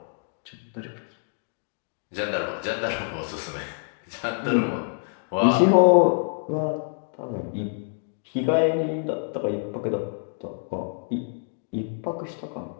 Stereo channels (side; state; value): right; silent; digital silence